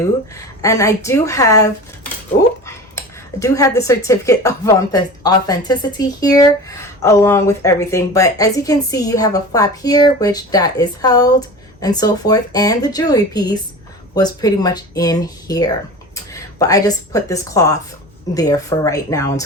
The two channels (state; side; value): normal; both; correlation 0.34